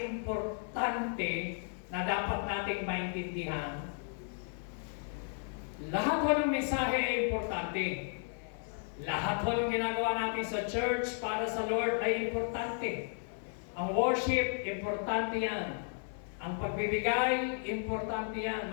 na dapat nating maintindihan. Lahat po ng mensahe ay importante. Lahat po ng ginagawa natin sa church para sa Lord ay importante. Ang worship, importante yan. Ang pagbibigay, importante yan.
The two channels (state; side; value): silent; right; 55 dB below the other